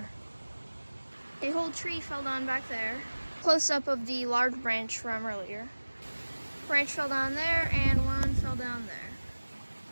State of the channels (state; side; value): inverted; both; correlation -1.00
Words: A whole tree fell down back there. Close up of the large branch from earlier. Branch fell down there and one fell down there.